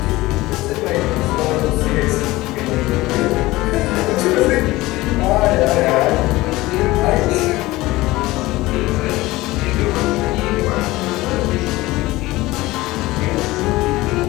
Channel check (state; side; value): quieter; right; 19.1 dB